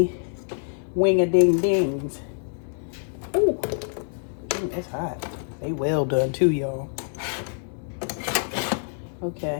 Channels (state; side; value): silent; right; 61 dB below the other